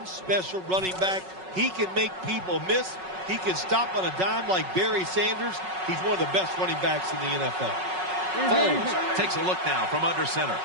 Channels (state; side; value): late; left; 5.4 ms